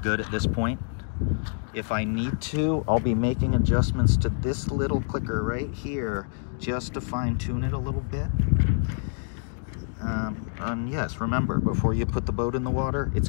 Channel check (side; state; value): right; silent; digital silence